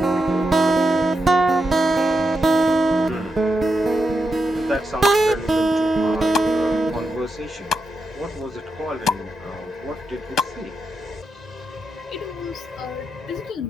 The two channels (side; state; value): both; normal; correlation 0.85